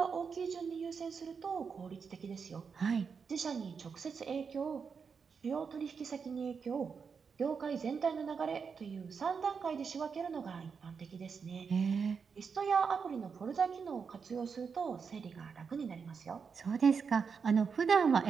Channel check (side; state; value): left; quieter; 5.9 dB